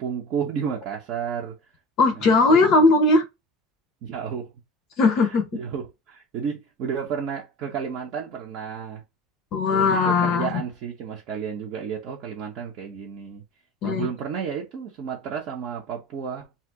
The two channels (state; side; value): normal; both; correlation 0.37